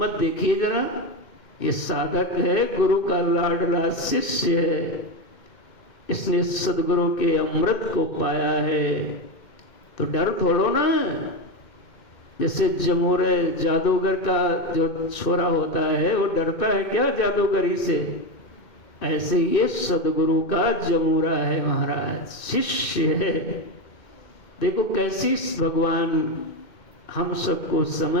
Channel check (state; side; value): late; right; 2.6 ms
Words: देखिए जरा, ये साधक है, गुरु का लाडला शिष्य है, इसने सदगुरु के अमृत को पाया है, तो डर थोड़ो ना। जैसे जमूरे जादूगर का जो छोरा होता है वो डरता है क्या जादूगरी से, ऐसे ये सदगुरु का जमूरा है महाराज, शिष्य है। देखो कैसी भगवान हम सबको